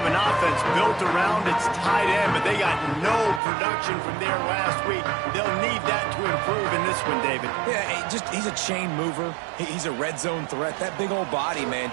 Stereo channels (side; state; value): left; drops out; at 3.4 s